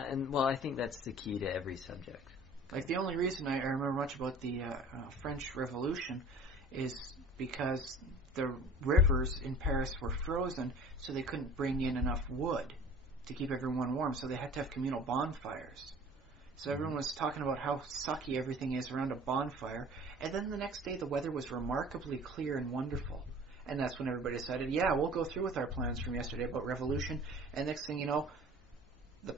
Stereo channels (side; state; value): both; normal; correlation 0.46